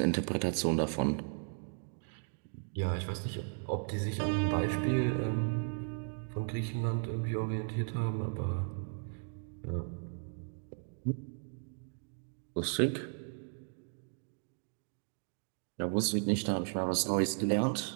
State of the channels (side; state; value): left; silent; 54 dB below the other